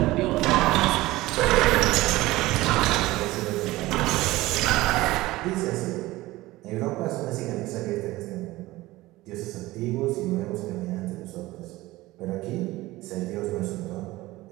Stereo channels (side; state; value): left; quieter; 18.5 dB